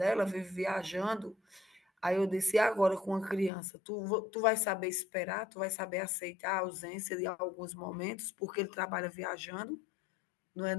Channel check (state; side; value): drops out; right; at 3.5 s